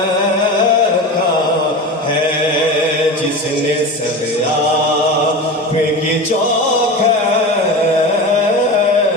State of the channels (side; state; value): both; normal; correlation 0.28